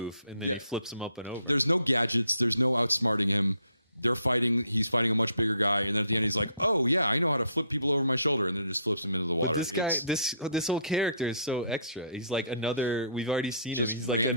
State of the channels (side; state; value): both; inverted; correlation -0.63